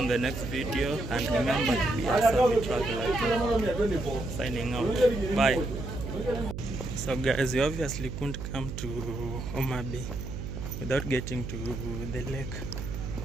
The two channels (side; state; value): right; noise; hum, 7 dB below the sound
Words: the next video, and remember to be a savvy traveler. Signing out. Bye. So guys, you obviously couldn't come to Homabay without getting to the lake.